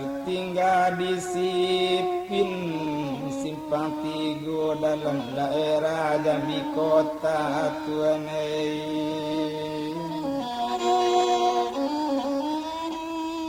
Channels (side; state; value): both; identical; correlation 1.00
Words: tinggal di Sipin simpang tigo dalam daerah Jambi kota tuanai.